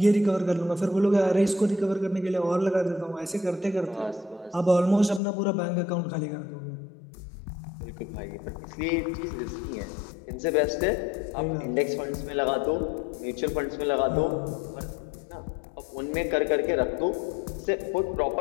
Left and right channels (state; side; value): drops out; right; at 5.2 s